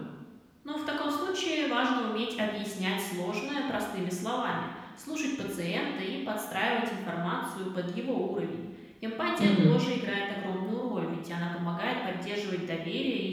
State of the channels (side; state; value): both; identical; correlation 1.00